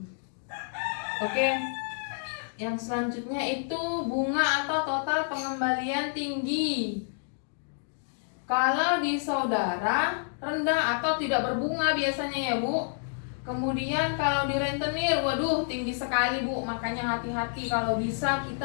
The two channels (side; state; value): right; silent; digital silence